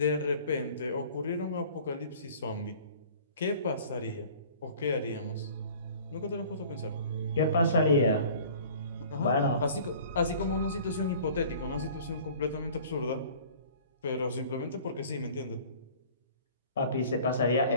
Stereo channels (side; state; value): both; inverted; correlation -0.48